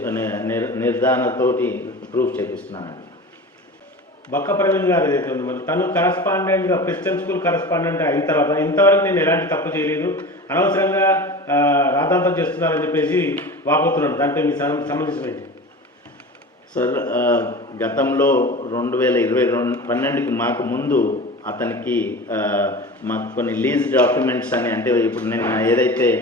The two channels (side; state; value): both; normal; correlation 0.33